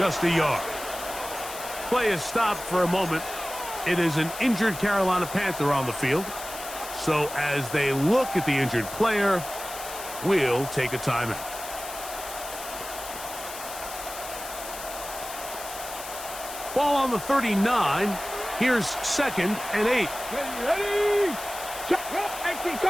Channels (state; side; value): noise; left; hiss, 11 dB below the sound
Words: a yard. Play is stopped for a moment. It is an injured Carolina Panther on the field. So as they look at the injured player, we'll take a timeout. Ball on the 39. Here's 2nd and 8. Ready? Check. 18